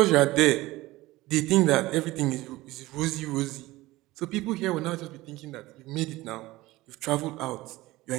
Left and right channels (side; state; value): left; quieter; 18.8 dB